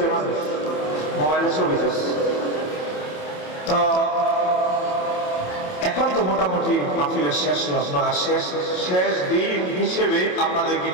মানুষ, মোবাইলে ছবি চলছে। তো এখন তো মোটামুটি মাহফিলের শেষ লগ্ন, আর শেষ দিন হিসেবে আপনাদেরকে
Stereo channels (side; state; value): right; late; 27 ms